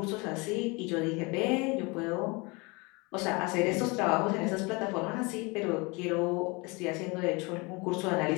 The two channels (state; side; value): quieter; right; 27.4 dB